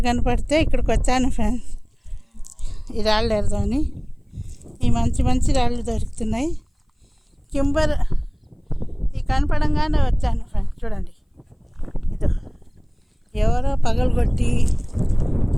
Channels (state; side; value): identical; both; correlation 1.00